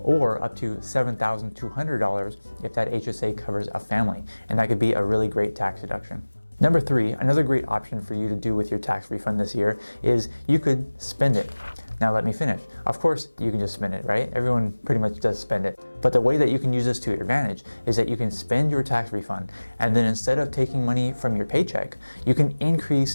or up to $7,200 if that HSA covers a family. And that could be a really great tax deduction. Number 3, another great option for you to do with your tax refund this year is you could spend it. Now let me finish. Of course, you can just spend it, right? Everyone pretty much does spend it. But the way that you can use this to your advantage is that you can spend your tax refund, and then instead of taking money from your paycheck, you can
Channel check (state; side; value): inverted; both; correlation -1.00